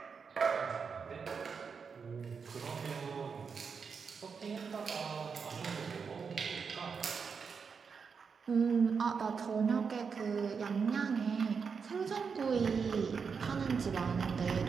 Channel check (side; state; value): left; quieter; 5.8 dB